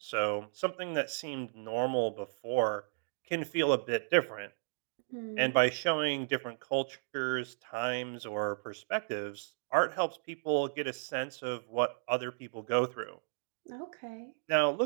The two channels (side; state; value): left; silent; digital silence